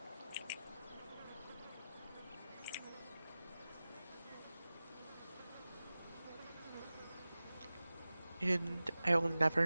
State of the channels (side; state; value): both; inverted; correlation -0.96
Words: And I will